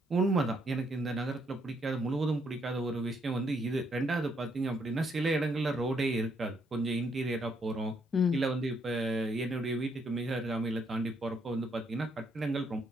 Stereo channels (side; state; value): both; normal; correlation 0.73